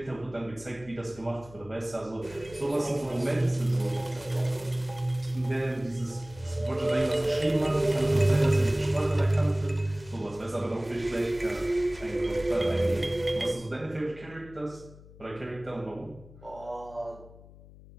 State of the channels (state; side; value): noise; left; hum, 20 dB below the sound